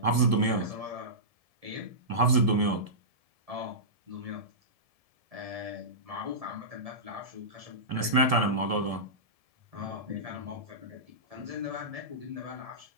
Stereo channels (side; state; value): left; late; 1.7 ms